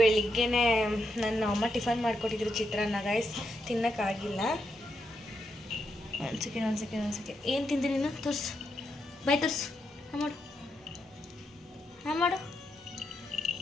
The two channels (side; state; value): both; normal; correlation 0.82